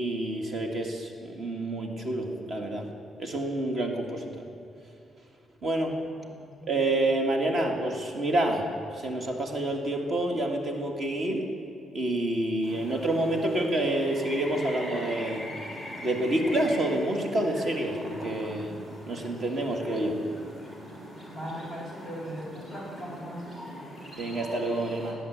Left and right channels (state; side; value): normal; both; correlation 0.71